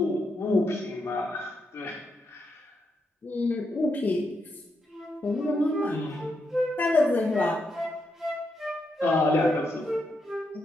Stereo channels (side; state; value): both; normal; correlation 0.82